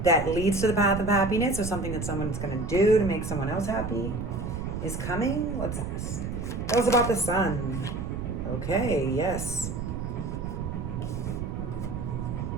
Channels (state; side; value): noise; right; rumble, 4 dB below the sound